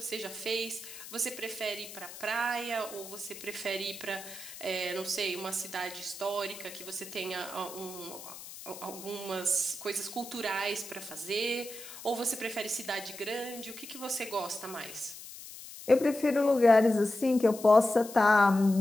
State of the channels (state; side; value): noise; left; hiss, 14 dB below the sound